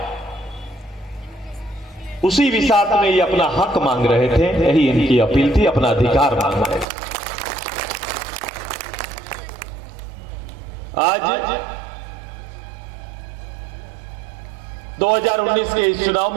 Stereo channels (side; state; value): left; drops out; at 6.9 s